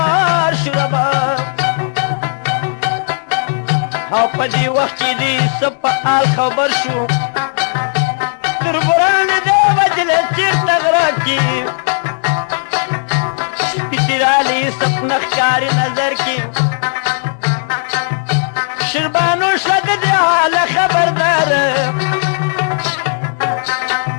شو ربه او په دې وخت کې دې څه په حال خبر شو تربران دې وجلې چېرته غره کې سپي رالی سپنه ښکاري نظر کې شیربانو شوه د دې حاله خبردار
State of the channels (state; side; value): silent; right; digital silence